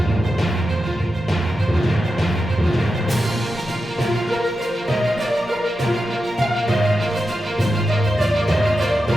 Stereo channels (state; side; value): normal; both; correlation 0.90